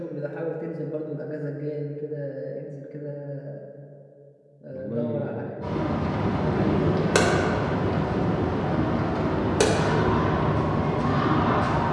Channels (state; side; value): identical; both; correlation 1.00